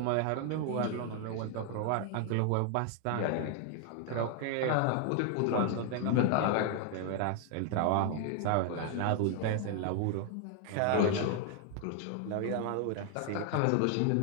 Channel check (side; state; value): both; different; correlation 0.00